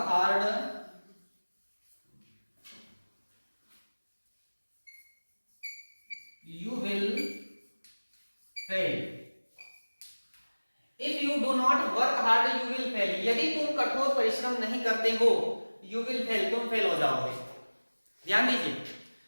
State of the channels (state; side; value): inverted; both; correlation -1.00